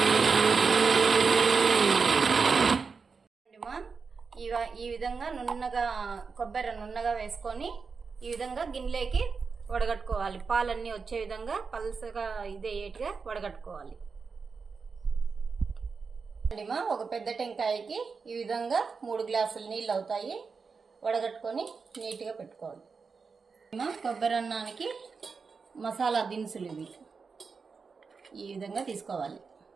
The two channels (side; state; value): left; quieter; 5.1 dB